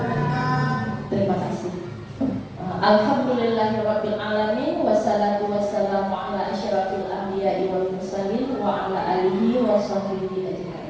Terima kasih. Alhamdulillahirabbil alamin, wassalatu wassalamu ala asyrafil anbiya'i wal mursalin wa ala alihi wa sahbihi ajmain.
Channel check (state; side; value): identical; both; correlation 1.00